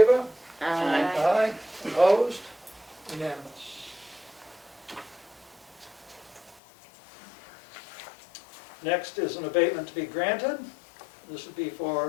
Aye. Aye. Opposed? Unanimous. Next is an abatement to be granted. This would be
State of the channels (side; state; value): right; drops out; at 6.6 s